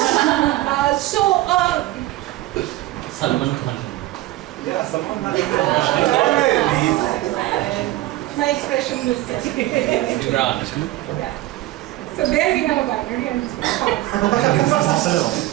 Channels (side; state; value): left; quieter; 16.8 dB